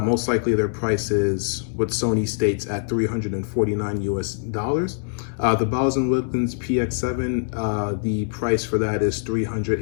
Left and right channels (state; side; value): silent; right; digital silence